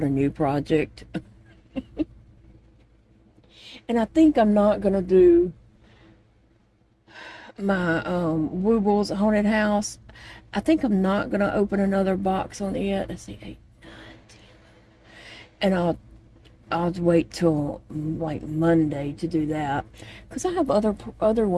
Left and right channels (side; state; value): both; identical; correlation 1.00